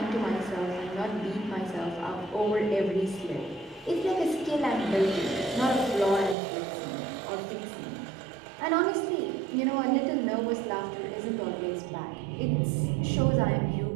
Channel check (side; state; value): left; drops out; at 6.4 s